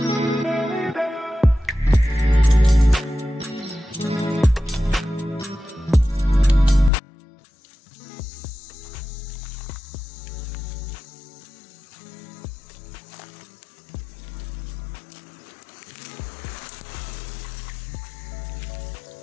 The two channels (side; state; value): right; drops out; at 6.9 s